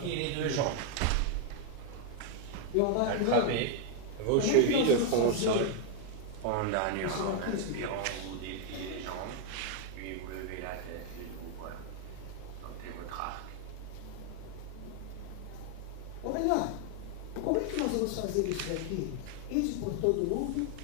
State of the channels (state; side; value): different; both; correlation 0.00